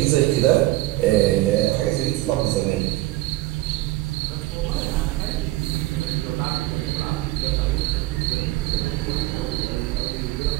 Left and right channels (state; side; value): quieter; left; 17.8 dB